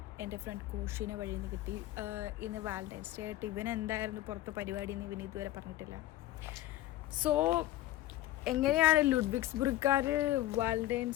എൻ്റെ front കോഷിനെ വഴിയിൽ നിന്ന് കിട്ടി. ഇന്ന് വാലന്റൈൻസ് ഡേ ആയിട്ട് ഇവൻ എന്തായിരുന്നു പുറത്ത് പരിപാടി എന്ന് ഇവന് ഇതുവരെ പറഞ്ഞിട്ടില്ല. സോ എങ്ങനെയാണ് ലുഡ്വിഗ്സ്ബർഗുകാർ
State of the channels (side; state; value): right; quieter; 15.3 dB